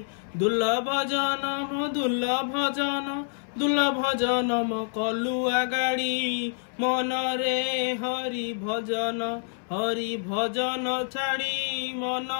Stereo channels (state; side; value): silent; right; 60 dB below the other